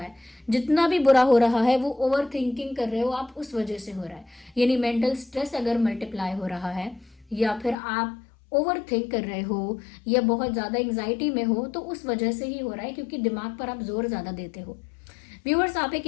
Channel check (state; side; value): drops out; right; at 7.8 s